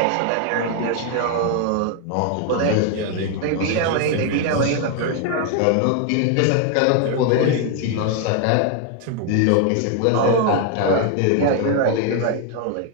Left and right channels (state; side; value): different; both; correlation 0.00